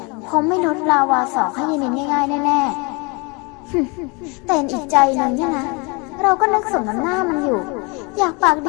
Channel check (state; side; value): quieter; right; 29.9 dB